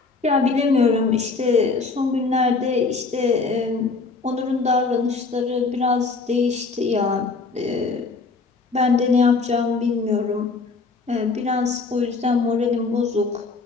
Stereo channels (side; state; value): right; quieter; 4.2 dB